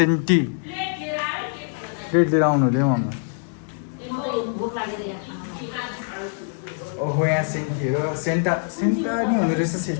प्लेट लिएर आउनु हुँदै मम्मी ओहो यहाँ सेन्टीहरू सेन्टा सेन्टा नि हुँदो रहेछ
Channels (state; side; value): silent; right; 63 dB below the other